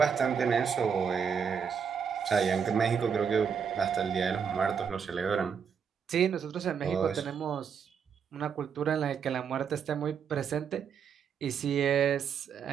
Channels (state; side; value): quieter; left; 6.9 dB